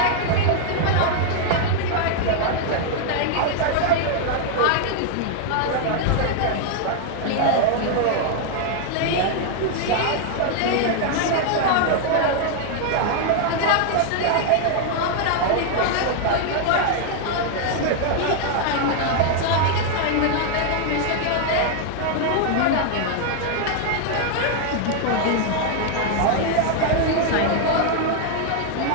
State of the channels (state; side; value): different; both; correlation 0.00